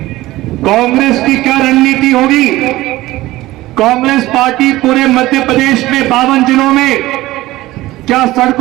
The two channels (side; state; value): left; quieter; 17.4 dB